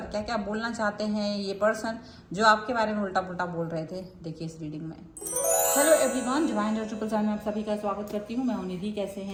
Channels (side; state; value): both; identical; correlation 1.00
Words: क्या क्या बोलना चाहते हैं ये पर्सन जो आपके बारे में उल्टा पुल्टा बोल रहे थे, देखिए इस रीडिंग में। हेलो एवरीवन, डिवाइन ट्रिपल में आप सभी का स्वागत करती हूँ। मैं हूं निधि। कैसे